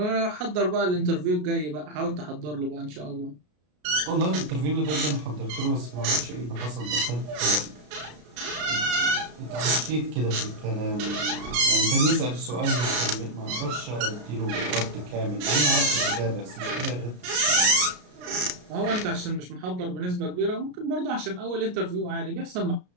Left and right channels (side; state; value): left; late; 33 ms